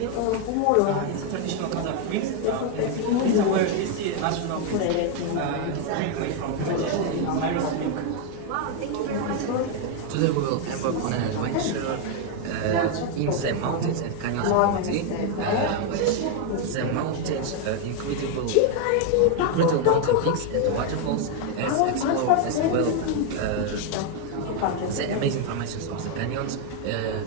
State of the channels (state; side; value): different; both; correlation 0.01